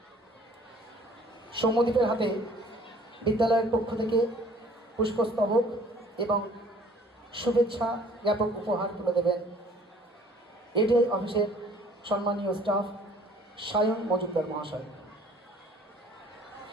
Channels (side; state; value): both; normal; correlation 0.54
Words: সৌম্যদীপের হাতে বিদ্যালয়ের পক্ষ থেকে পুষ্পস্তবক এবং শুভেচ্ছা জ্ঞাপক উপহার তুলে দেবেন এডিআই অফিসের সম্মানীয় স্টাফ সায়ন মজুমদার মহাশয়।